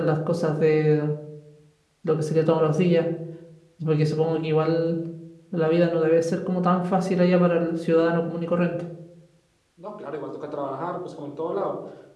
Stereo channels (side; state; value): both; identical; correlation 1.00